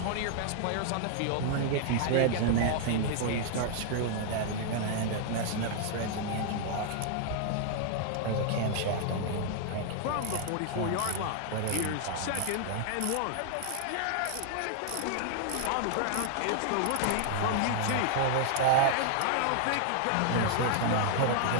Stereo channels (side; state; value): both; different; correlation 0.00